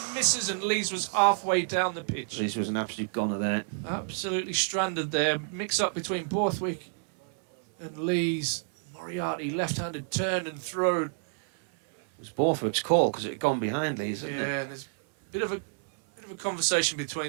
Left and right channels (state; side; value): silent; left; 59 dB below the other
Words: misses, and Lees was halfway down the pitch. This was an absolute goner there. Absolutely stranded there. Mix-up between Borthwick and Lees. Moriarty left-handed turn and throw. It was Borthwick's call because it had gone behind Lees, hadn't it? Yeah, and there's a bit of a conversation